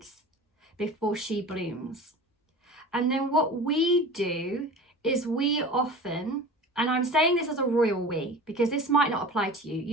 before she blooms. And then what we do is we often, and I'm saying this as a royal we, because this might not apply to you.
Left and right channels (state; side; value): normal; both; correlation 0.37